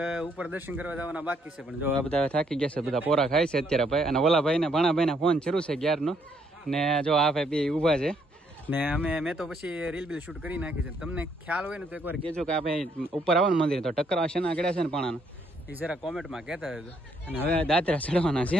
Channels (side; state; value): both; normal; correlation 0.71